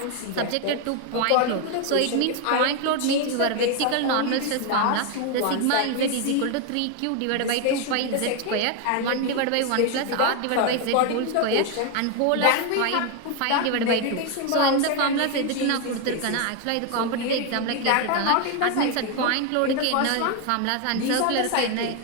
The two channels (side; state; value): both; different; correlation 0.01